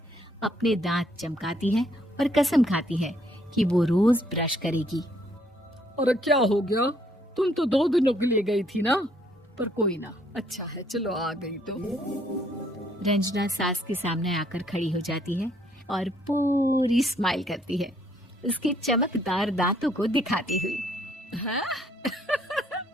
अपने दांत चमकाती है और कसम खाती है कि वो रोज ब्रश करेगी। अरे क्या हो गया? तुम तो 2 दिनों के लिए गई थी ना। पर कोई ना, अच्छा है, चलो आ गई तो। रंजना सास के सामने आकर खड़ी हो जाती है और पूरी स्माइल करती है, उसके चमकदार दांतों को दिखाती हुई। हैं?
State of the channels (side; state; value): both; normal; correlation 0.67